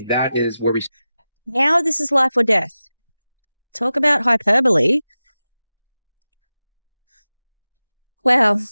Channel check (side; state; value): both; inverted; correlation -0.94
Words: that is where we. Now this is life or death. Talk about hyperbole. Well,